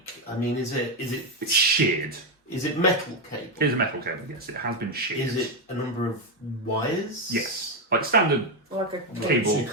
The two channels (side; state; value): both; normal; correlation 0.06